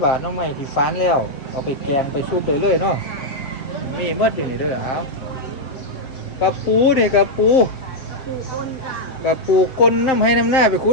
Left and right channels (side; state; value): right; late; 7.3 ms